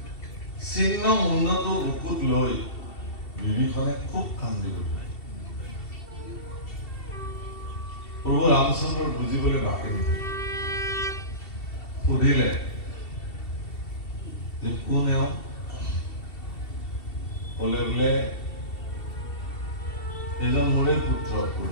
চিহ্ন মুণ্ডটো বুকুত লৈ বিভীষণে খুব কান্দি গ'ল প্ৰভু ৰামচন্দ্ৰৰ বুজিবলৈ বাকী নহ'ল সুধিলে যে কোন এওঁ ক'লে বোলে এজন মোৰে পুত্ৰ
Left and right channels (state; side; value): late; right; 2.7 ms